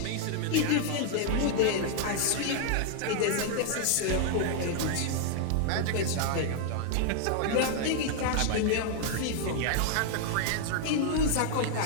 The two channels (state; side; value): different; both; correlation 0.00